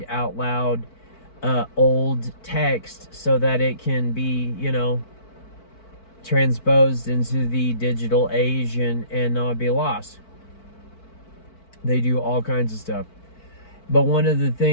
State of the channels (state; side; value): late; right; 4.5 ms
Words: out loud old text, so that it can be, transposed into the digital age and not be lost. They do all kinds of stuff. But one of the